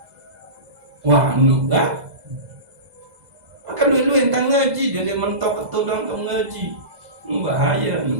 Wah, nu kan? Maka dulu yang ngaji dia mentok ketudang untuk ngaji. Bahaya, nu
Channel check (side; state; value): left; late; 2.0 ms